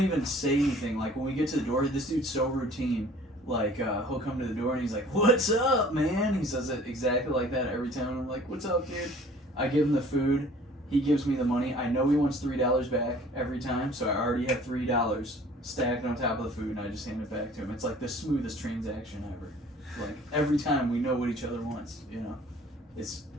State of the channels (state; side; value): normal; both; correlation 0.51